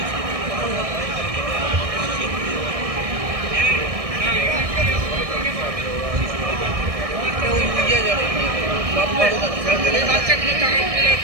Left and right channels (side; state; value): left; late; 1.6 ms